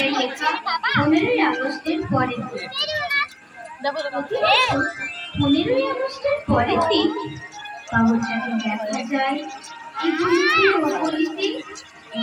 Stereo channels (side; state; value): both; identical; correlation 1.00